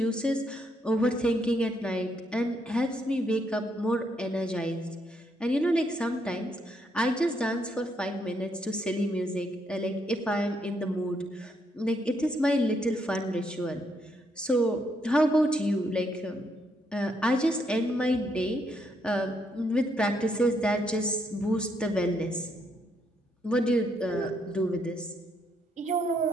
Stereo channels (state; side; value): normal; both; correlation 0.75